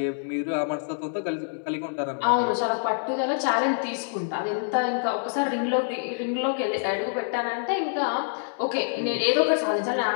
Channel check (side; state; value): right; silent; 61 dB below the other